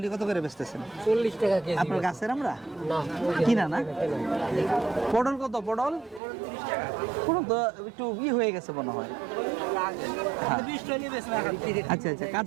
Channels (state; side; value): drops out; left; at 6.2 s